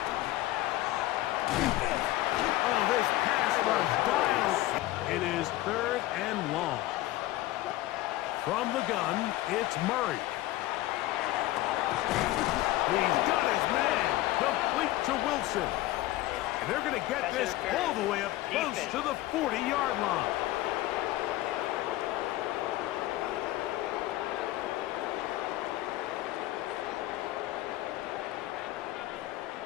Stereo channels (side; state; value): right; quieter; 16.5 dB